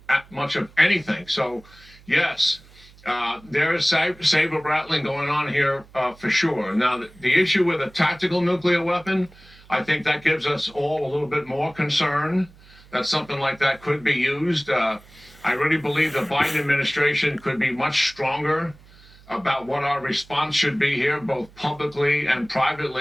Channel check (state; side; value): noise; right; hum, 24 dB below the sound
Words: much of anything. So, yes, there is saber rattling going on here for sure. Now, the issue with a tactical nuclear weapon, I think that gives us all a little bit more concern that something like that could be used. I really believe the Biden administration could be much stronger about what our response should be here, both publicly and